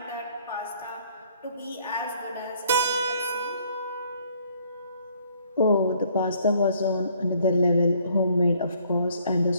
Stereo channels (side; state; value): both; inverted; correlation -0.63